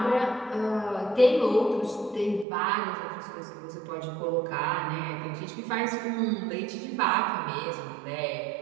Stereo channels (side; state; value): left; drops out; at 2.5 s